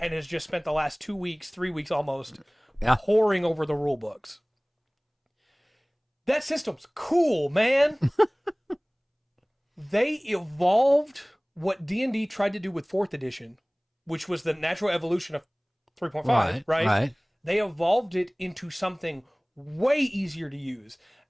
has just spent the last 2 weeks, 3 weeks almost, poring over the rule books? That system's cool, man. They evolved what D&D tried to do with 4th edition, which was the natural evolution of 3.5, right? They evolved it into something way easier to use.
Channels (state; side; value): identical; both; correlation 1.00